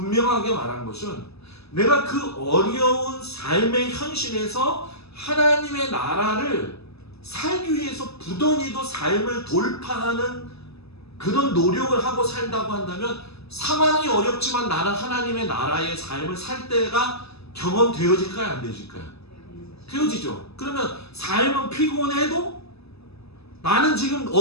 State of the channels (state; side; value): late; right; 0.79 ms